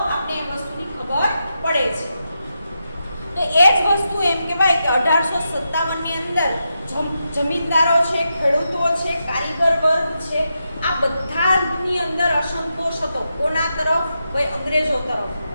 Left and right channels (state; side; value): inverted; both; correlation -0.86